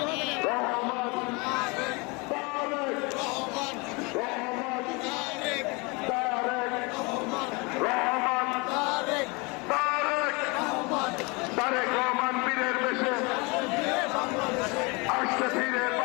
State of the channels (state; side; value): quieter; right; 28.0 dB